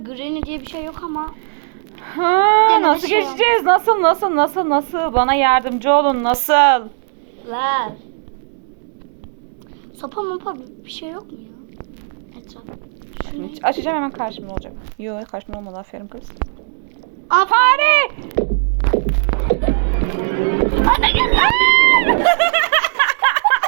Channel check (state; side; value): silent; left; digital silence